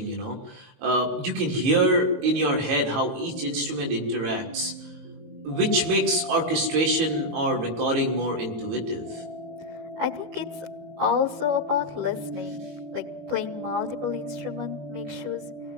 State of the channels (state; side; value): late; left; 18 ms